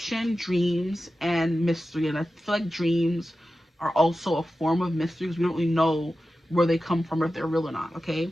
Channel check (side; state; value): both; normal; correlation 0.93